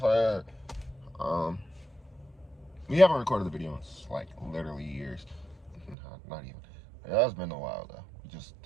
sir. We haven't recorded the video in like literally years. Not even. It has been a while though. We just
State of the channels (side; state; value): left; drops out; at 6.0 s